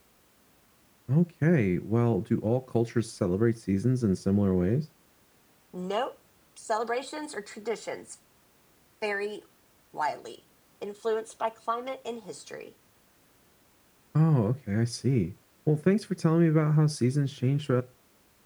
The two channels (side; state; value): both; identical; correlation 1.00